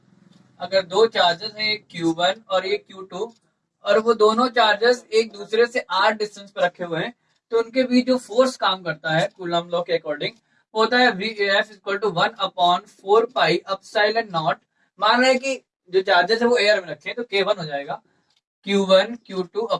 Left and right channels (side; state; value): both; identical; correlation 1.00